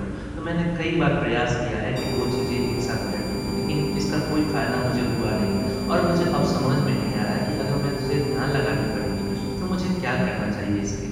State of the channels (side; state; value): both; identical; correlation 1.00